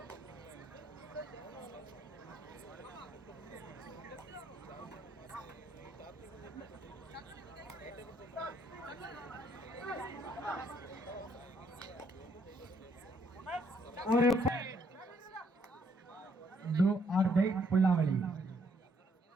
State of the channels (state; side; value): normal; both; correlation 0.70